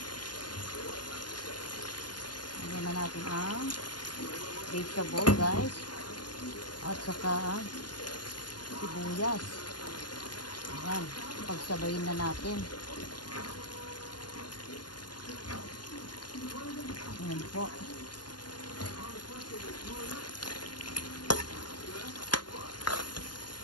Lagyan na natin ang vegetable, guys. At saka sibuyas. Ayan. Pagsabayin na natin. Ayan po.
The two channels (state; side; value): late; right; 0.70 ms